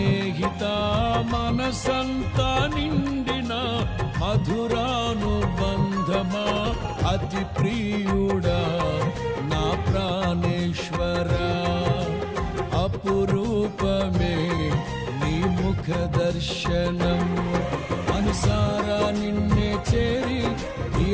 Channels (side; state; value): both; identical; correlation 1.00